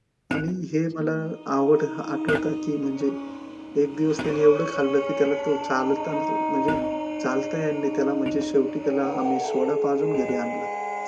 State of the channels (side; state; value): both; identical; correlation 1.00